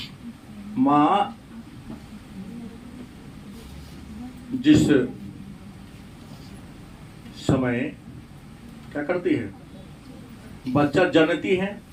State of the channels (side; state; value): both; identical; correlation 1.00